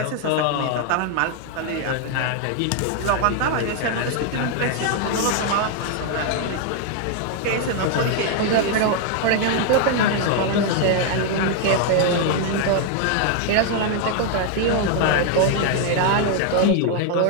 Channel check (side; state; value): both; different; correlation 0.00